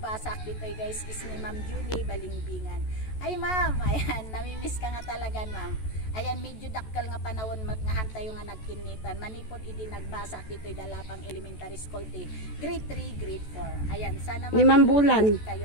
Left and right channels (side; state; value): right; late; 14 ms